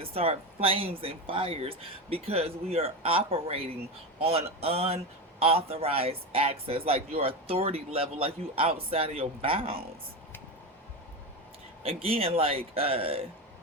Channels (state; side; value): normal; both; correlation 0.18